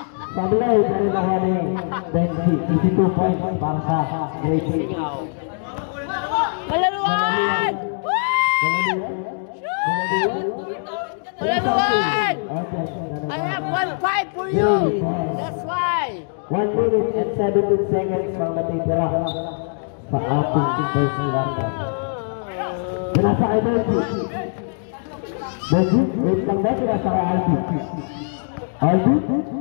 Sablay, pero nakuha ni Benji. 22 points para sa grade 2. Malaluan! I have 1-5 for you. That's why. 1 minute and 17 seconds ang matitira sa ating first quarter. Pinasa kay Benji. Wait lang ba? Pinasa kay Aldi.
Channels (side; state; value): right; silent; digital silence